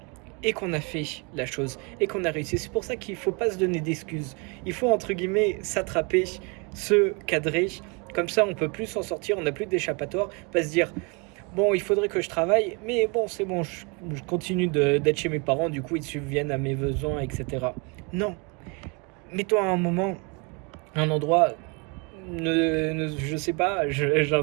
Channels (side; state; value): left; quieter; 32.0 dB